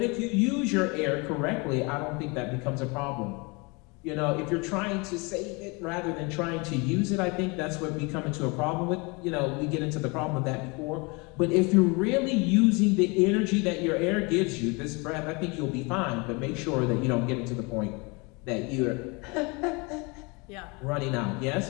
if you use your air correctly, I don't think that becomes a problem. You know, if you're trying to save it rather than trying to use it, I think that's what we come into a problem with. You know, we get into the problem with that before. But if you're really using the energy that your air gives you, this breath, I think you'll be fine. But make sure that you don't get into the point that you're Yeah. running out. Yes?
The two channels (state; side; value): quieter; right; 28.6 dB